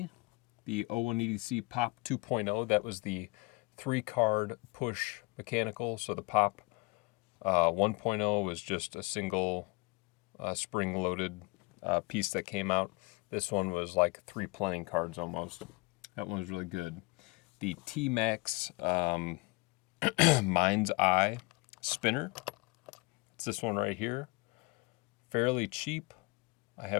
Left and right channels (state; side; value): quieter; right; 26.2 dB